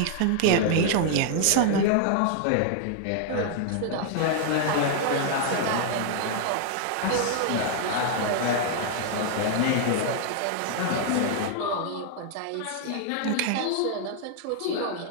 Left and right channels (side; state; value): both; different; correlation 0.00